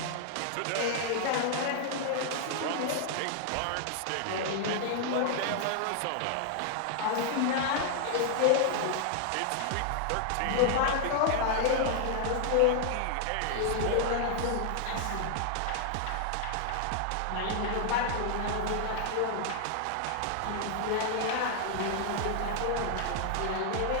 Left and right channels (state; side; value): different; both; correlation -0.01